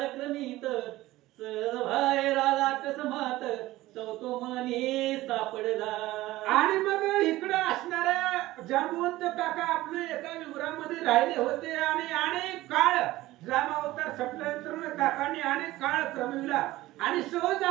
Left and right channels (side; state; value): left; quieter; 17.2 dB